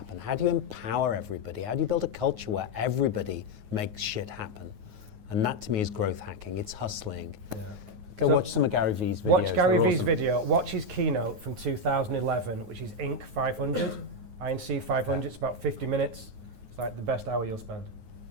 How do you empower everybody? How do you build a culture where everybody makes shit happen? And that to me is growth hacking. It's hustling. Yeah. Go watch some of Gary V's videos. Watch Gary They're V's awesome. video. Watch his keynote from 2011, which is Inc. 500. INC 500. It's about 50 minutes. It's like the best hour you'll spend.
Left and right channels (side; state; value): left; late; 9.4 ms